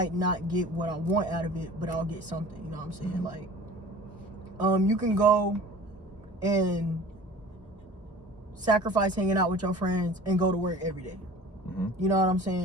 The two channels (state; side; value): normal; both; correlation 0.43